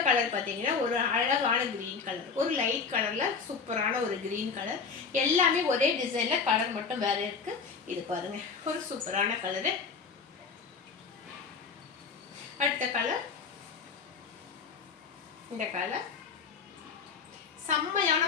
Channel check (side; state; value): right; quieter; 5.4 dB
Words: கலர் பார்த்தீங்கன்னா ஒரு அழகான க்ரீன் கலர், ஒரு லைட் கலரில் சூப்பரான ஒரு க்ரீன் கலர். எல்லாமே ஒரே டிசைனில், கலர் மட்டும் வேறு இருக்குது. இது பாருங்கள், ஒரு சூப்பரான கலரு. அடுத்த கலர், இந்த கலர் செம்மையான